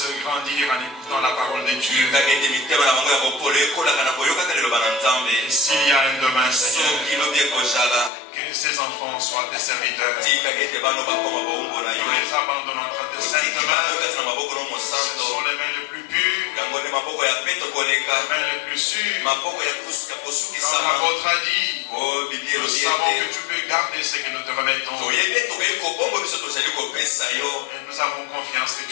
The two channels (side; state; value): right; drops out; at 8.1 s